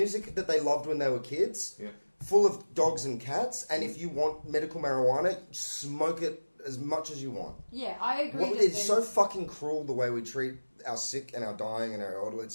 that they loved when they were kids. Yeah. Full of dogs and cats. And if you want medical marijuana, smoke it as much as you want. Yeah, I agree. It's so fucking cruel the way we treat our sick and our dying and our elderly.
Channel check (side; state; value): both; inverted; correlation -1.00